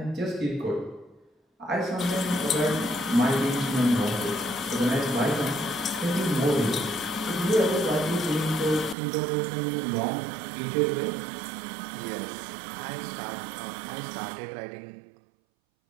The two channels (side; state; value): left; drops out; at 9.0 s